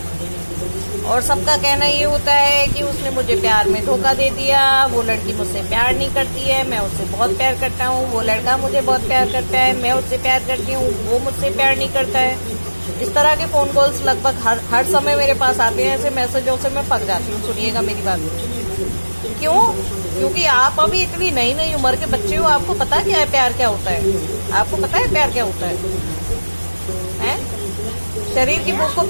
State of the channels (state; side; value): inverted; both; correlation -1.00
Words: और सबका कहना ये होता है कि उसने मुझे प्यार में धोखा दे दिया, वो लड़की मुझसे प्यार नहीं करती है, मैं उससे बहुत प्यार करता हूँ, वो लड़का मुझे बहुत प्यार करता है, मैं उससे प्यार करती हूँ, वो मुझसे प्यार नहीं करता है। इस तरह के फोन कॉल्स लगभग हर समय मेरे पास आते हैं। ऐसे मैसेजों से मैं पक जाती हूँ। सुनिएगा मेरी बात। क्यों? क्योंकि आप अभी इतनी नई नई उम्र के बच्चे हो, आपको पता क्या है प्यार क्या होता है? आपको पता है प्यार क्या होता है? शरीर की भूख को